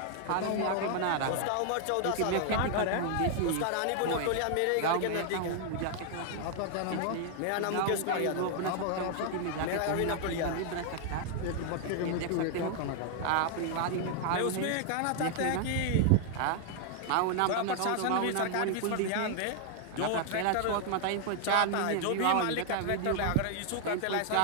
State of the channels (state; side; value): different; both; correlation 0.00